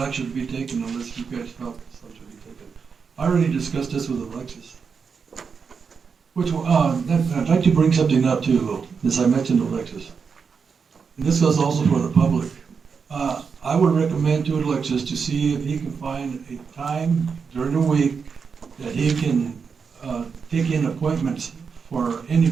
action to be taken unless you guys felt some should be taken. I already discussed this with Alexis. I'd like to bring something up too, though, since I mentioned Alexis. And this goes also for the public. I would recommend to Alexis to see if he can find a time during the week that he can take in appointments for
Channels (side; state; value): left; quieter; 5.8 dB